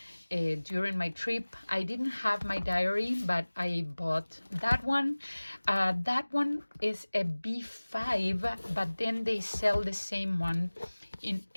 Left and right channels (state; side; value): inverted; both; correlation -1.00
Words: during my trip, I didn't have my diary, but I bought that one. That one is a B5, but then they sell the same one in